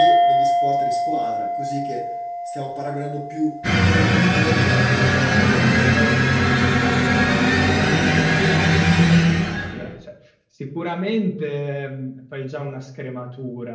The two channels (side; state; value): both; identical; correlation 1.00